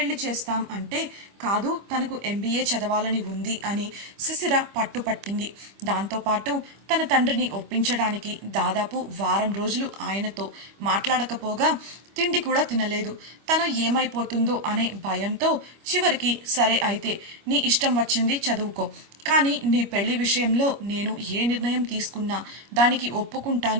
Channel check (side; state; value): left; late; 25 ms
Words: చేస్తాం అంటే కాదు, తనకు MBA చదవాలని ఉంది అని సుశిర పట్టుపట్టింది. దాంతోపాటు తన తండ్రిని ఒప్పించడానికి దాదాపు వారం రోజులు ఆయనతో మాట్లాడకపోగా తిండి కూడా తినలేదు. తను ఏమైపోతుందో అనే భయంతో చివరికి సరే అయితే నీ ఇష్టం వచ్చింది చదువుకో, కానీ నీ పెళ్లి విషయంలో నేను ఏ నిర్ణయం తీసుకున్నా దానికి